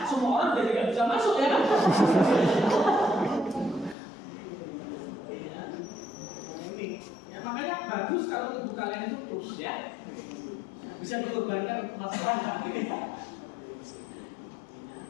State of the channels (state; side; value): drops out; right; at 4.0 s